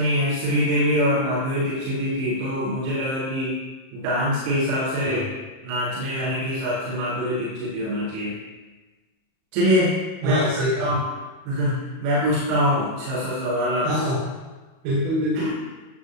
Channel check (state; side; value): late; left; 38 ms